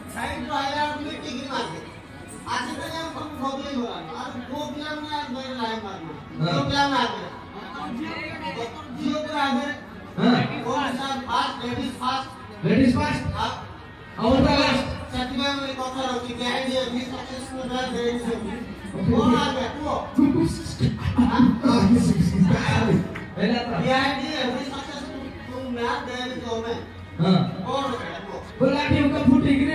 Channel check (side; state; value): both; identical; correlation 1.00